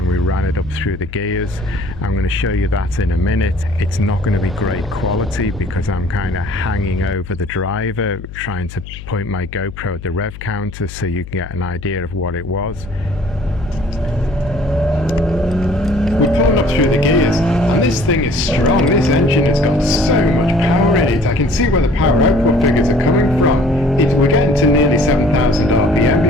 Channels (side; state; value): left; noise; hum, 13 dB below the sound